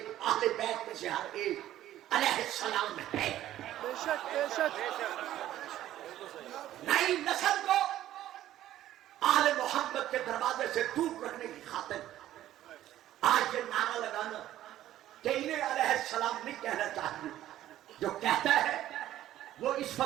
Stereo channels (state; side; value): quieter; left; 13.1 dB